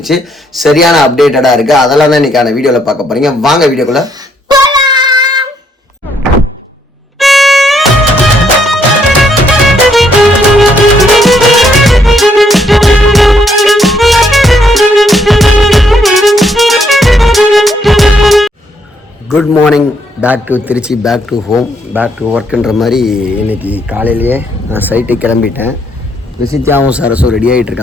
சரியான அப்டேட்டடாக இருக்குது. அதெல்லாம் தான் இன்றைக்கான வீடியோவில் பார்க்க போகிறீங்க. வாங்க வீடியோக்குள்ளே. Good morning, back to Trichy, back to home, back to ஒர்க்குன்ற மாதிரி இன்றைக்கி காலையிலேயே நான் சைட்டுக்கு கிளம்பிட்டேன். பிரசித்தியாவும் சரஸும் ரெடி ஆகிட்டு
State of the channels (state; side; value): normal; both; correlation 0.71